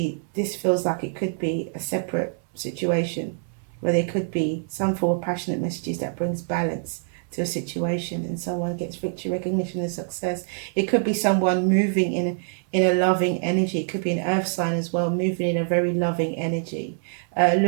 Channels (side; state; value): left; silent; 60 dB below the other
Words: this feels like it could be a separate situation where there could be some form of passionate messages that brings balance to a situation and someone gets victory, recognition, and success. It could be someone moving in a loving energy. It could be an earth sign as well, moving in a very loving energy,